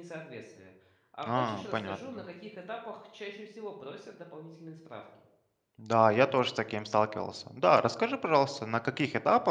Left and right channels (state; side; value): identical; both; correlation 1.00